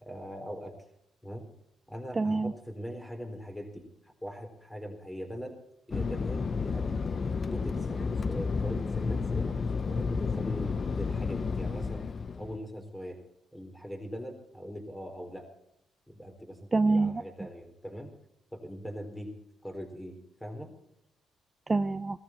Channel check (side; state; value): both; normal; correlation 0.90